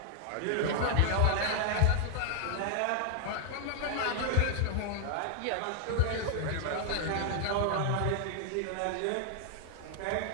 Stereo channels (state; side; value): different; both; correlation 0.00